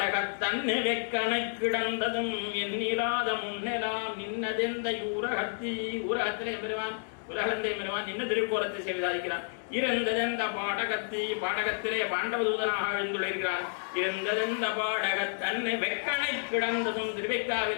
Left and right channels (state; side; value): silent; right; 57 dB below the other